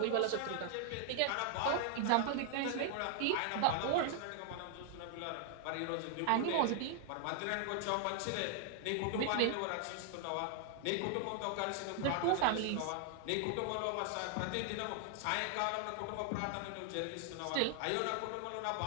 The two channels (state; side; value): different; both; correlation 0.00